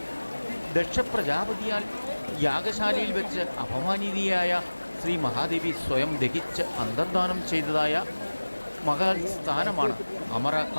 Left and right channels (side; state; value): both; inverted; correlation -1.00